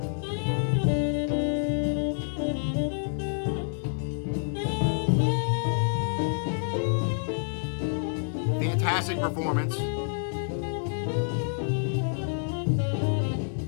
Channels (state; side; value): silent; right; digital silence